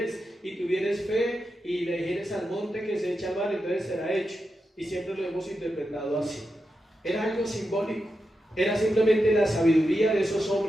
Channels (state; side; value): normal; both; correlation 0.88